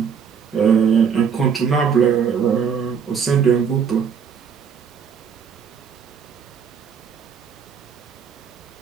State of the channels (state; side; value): quieter; left; 6.9 dB